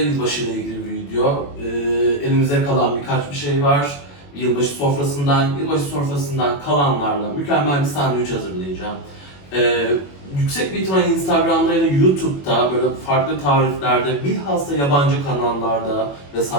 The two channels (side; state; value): right; late; 21 ms